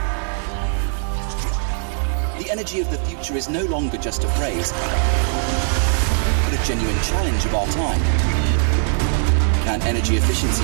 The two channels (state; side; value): silent; left; digital silence